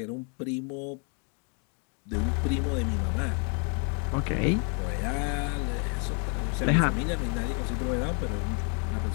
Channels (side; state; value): right; quieter; 37.9 dB